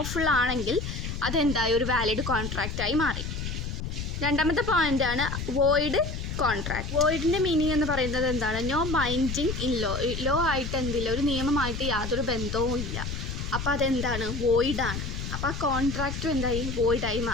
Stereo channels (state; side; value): noise; left; rumble, 5 dB below the sound